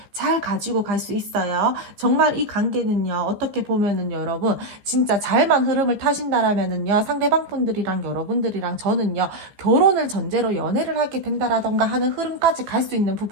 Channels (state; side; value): late; left; 15 ms